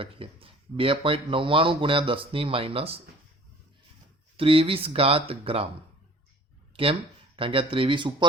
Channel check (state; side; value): normal; both; correlation 0.49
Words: 2.99 ગુણ્યા 10⁻23 ગ્રામ. કેમ? કારણ કે આ 23